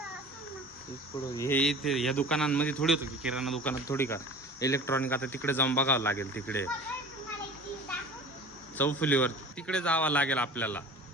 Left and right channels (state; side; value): normal; both; correlation 0.40